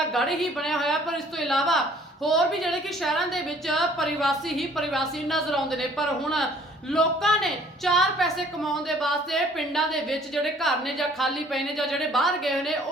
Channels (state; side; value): normal; both; correlation 0.56